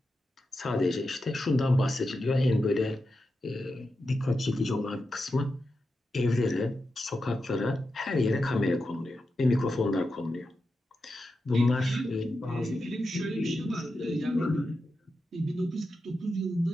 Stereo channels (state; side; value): normal; both; correlation 0.89